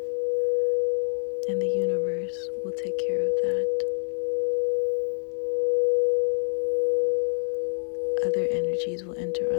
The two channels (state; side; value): silent; right; 61 dB below the other